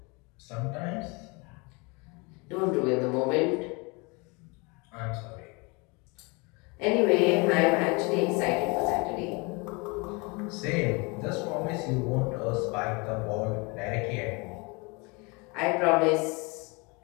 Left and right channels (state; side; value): quieter; right; 28.8 dB